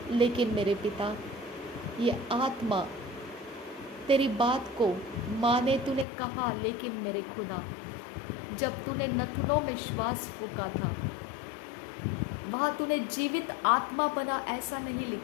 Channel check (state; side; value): drops out; right; at 6.1 s